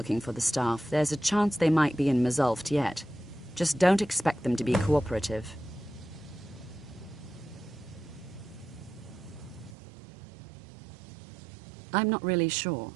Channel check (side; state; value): left; drops out; at 9.8 s